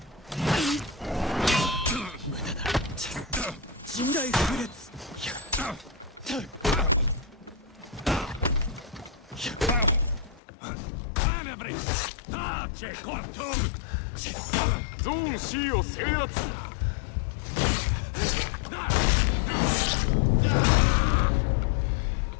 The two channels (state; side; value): drops out; right; at 10.4 s